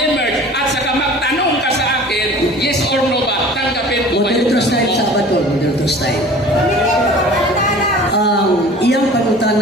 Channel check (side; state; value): both; normal; correlation 0.44